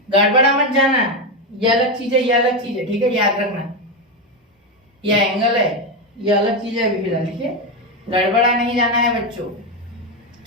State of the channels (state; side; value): normal; both; correlation 0.10